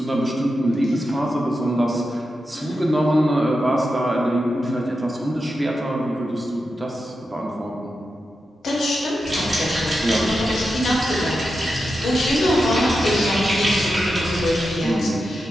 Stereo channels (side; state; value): both; normal; correlation 0.89